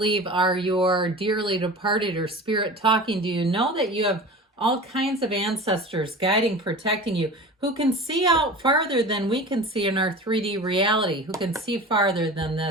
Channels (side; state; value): both; normal; correlation 0.35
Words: are your dearly departed or spirit talking to you, know that you have all kinds of ancestors guiding, protecting you, who can see out farther than we can see in our 3D reality, who can see farther than